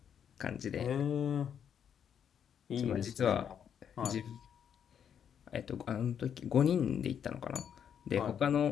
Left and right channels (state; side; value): quieter; right; 8.4 dB